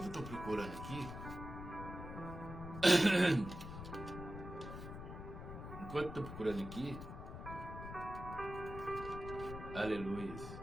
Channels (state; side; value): noise; left; rumble, 9 dB below the sound